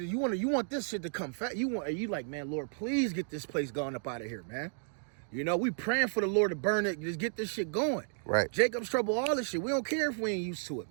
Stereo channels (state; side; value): silent; left; digital silence